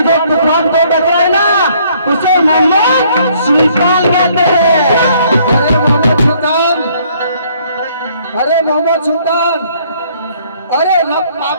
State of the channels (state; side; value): inverted; both; correlation -0.63